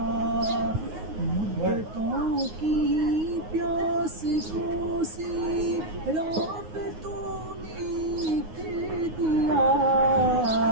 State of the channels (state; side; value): late; left; 9.5 ms